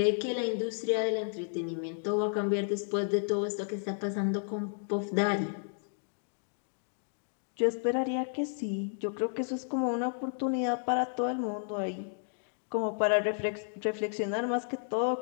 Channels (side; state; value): right; silent; digital silence